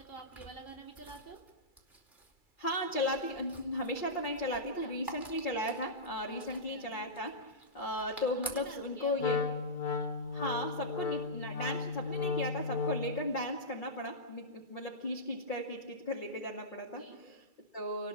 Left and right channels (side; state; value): right; late; 2.3 ms